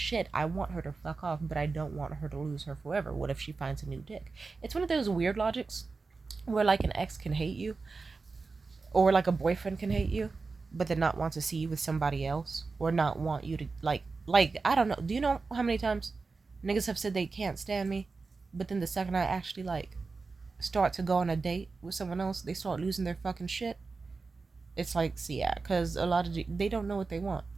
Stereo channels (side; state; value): left; quieter; 4.2 dB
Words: I want her to fuck off, but I don't want her to lose her forever. What if she finds a new dick?" It's one of those weird logics where like an ex can hate you, or like a boyfriend can hate you, but then not want to see you with somebody else, or not want you to like I don't know. Do you know how many times niggas have said they can't stand me, but then the second I actually like start to go on a date with someone else, they start losing their fucking shit. It's like, see, yeah, because a lot of they don't know what they want.